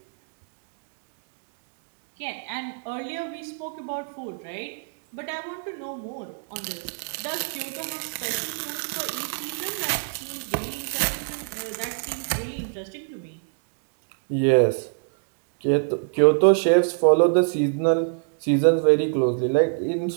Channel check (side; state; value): left; silent; 61 dB below the other